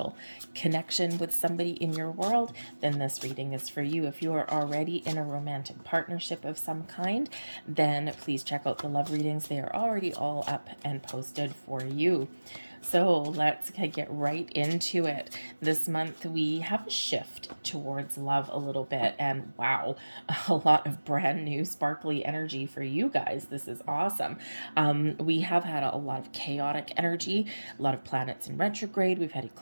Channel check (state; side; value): inverted; both; correlation -1.00